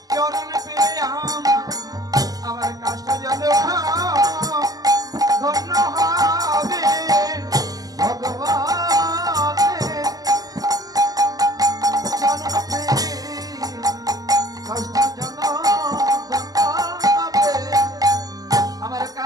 চরণ পেয়ে আমার কাষ্ট জনম ধন্য হবে, ভগবানের চরণ পেয়ে কষ্ট যেন ধন্য হবে। আমার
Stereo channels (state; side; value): late; left; 0.17 ms